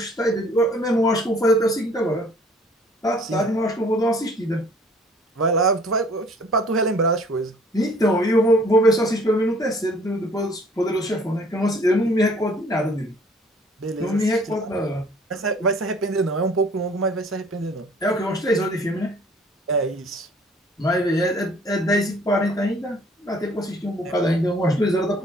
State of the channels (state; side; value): normal; both; correlation 0.56